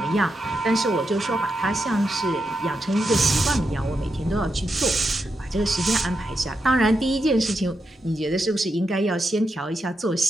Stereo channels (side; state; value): both; normal; correlation 0.85